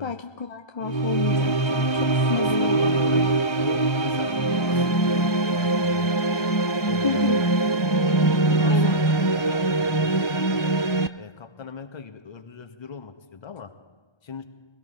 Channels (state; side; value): late; right; 1.3 ms